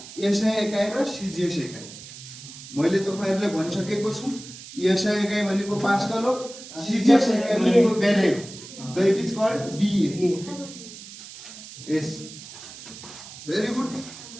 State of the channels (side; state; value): right; noise; hiss, 15 dB below the sound